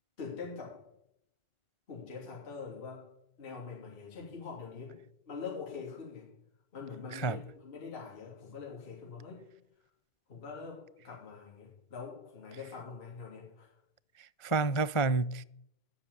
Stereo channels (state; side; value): late; right; 1.5 ms